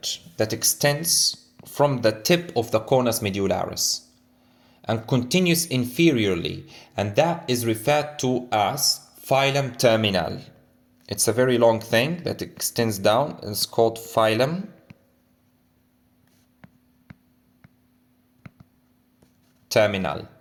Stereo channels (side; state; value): both; identical; correlation 1.00